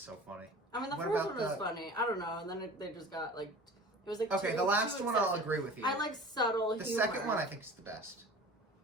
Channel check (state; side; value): normal; both; correlation 0.41